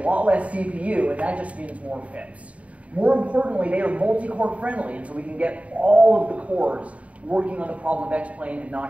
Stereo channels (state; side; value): late; left; 0.066 ms